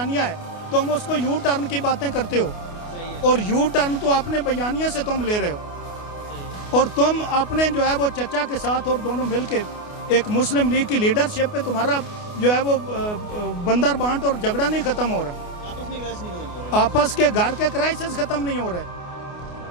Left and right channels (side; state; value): right; late; 28 ms